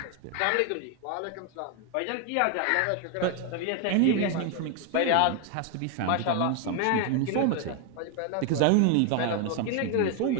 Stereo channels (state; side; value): different; both; correlation 0.01